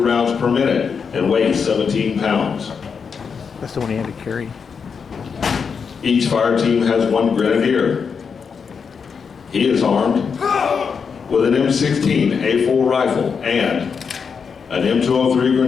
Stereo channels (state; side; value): quieter; right; 6.0 dB